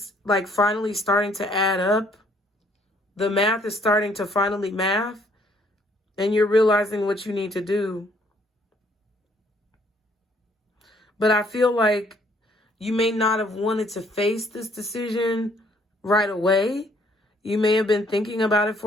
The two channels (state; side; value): normal; both; correlation 0.64